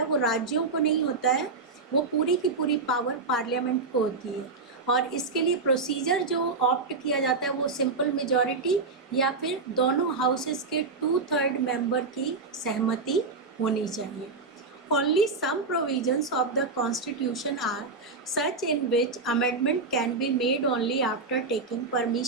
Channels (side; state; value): left; quieter; 4.1 dB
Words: वो राज्यों को नहीं होता है, वो पूरी की पूरी पावर पार्लियामेंट को होती है. और इसके लिए प्रोसीजर जो ऑप्ट किया जाता है वो सिंपल मेजॉरिटी या फिर दोनों हाउसेस के 2/3 मेंबर की सहमति होनी चाहिए. Only some provisions of the constitution are such in which amendment can be made only after taking